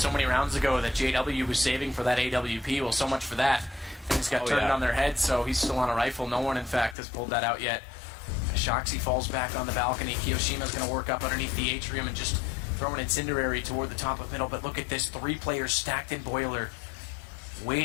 many rounds ago that JW was saving for that AWP. Well, so much for that. Things got turned on their head, so he's still on a rifle. No one, in fact, has pulled that out yet. Shoxy falls back on the balcony. Kiyoshima's going to work up underneath the atrium and just throw an incendiary toward the top of middle. But look at this, 3 players stacked in boiler,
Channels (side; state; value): right; drops out; at 7.0 s